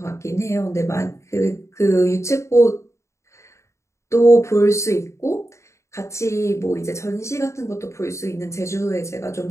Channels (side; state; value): right; late; 0.14 ms